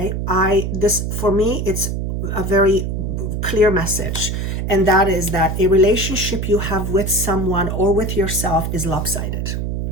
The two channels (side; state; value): right; noise; hum, 2 dB below the sound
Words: For me, it's a very clear message, and that is that a relationship you have with someone or with yourself is lopsided.